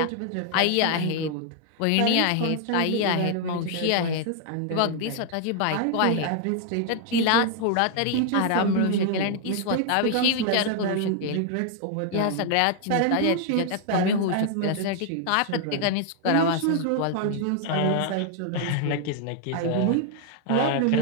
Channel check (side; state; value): both; different; correlation 0.00